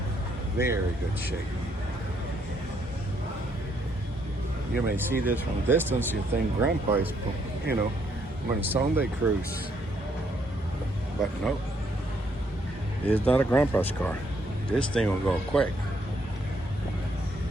very good shape. You may see this from a distance, you think Grandpa is, on a Sunday cruise. But no, it's not a Grandpa's car. This thing will go quick.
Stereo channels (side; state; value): both; normal; correlation 0.71